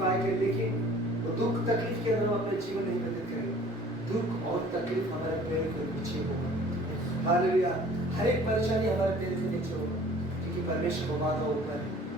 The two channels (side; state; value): both; normal; correlation 0.50